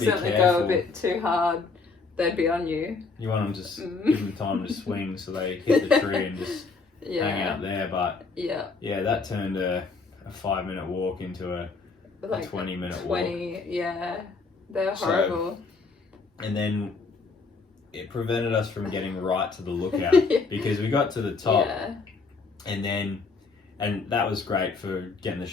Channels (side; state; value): right; quieter; 4.3 dB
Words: be accidentally go careful. a bit too hard, they'd be on you. You want them to just give them time to swing so they hit the tree and just hang out there. But Yeah. that turned a 5-minute walk into a Like 20-minute walk. 20, yeah. They're horrible. And then it prevented us from getting right to the lookout because we got to the top and that was great for getting the